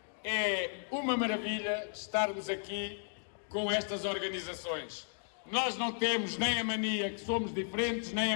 é uma maravilha estarmos aqui com estas organizações. Nós não temos nem a mania que somos diferentes, nem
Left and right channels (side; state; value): right; silent; digital silence